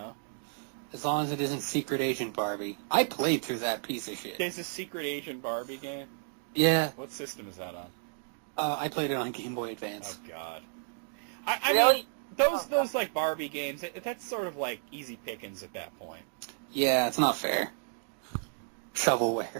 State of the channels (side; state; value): left; silent; digital silence